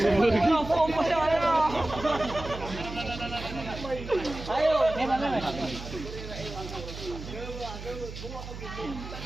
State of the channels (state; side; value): noise; right; hum, 11 dB below the sound